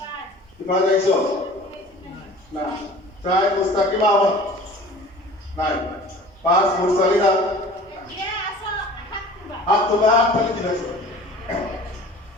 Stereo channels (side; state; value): both; normal; correlation 0.44